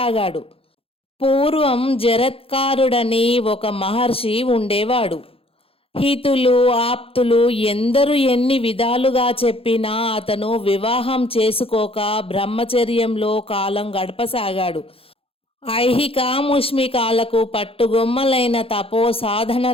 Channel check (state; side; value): late; right; 0.27 ms